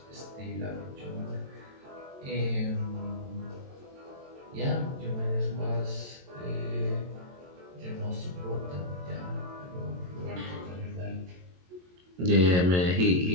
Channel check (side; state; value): left; late; 22 ms